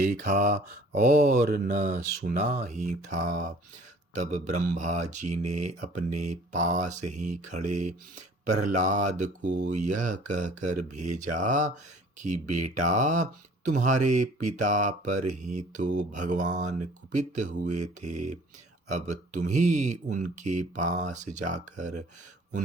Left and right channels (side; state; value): both; normal; correlation 0.52